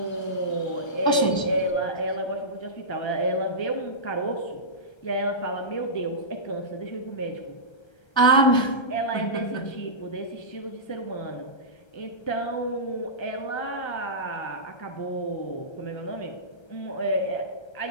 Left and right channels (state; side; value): late; right; 1.3 ms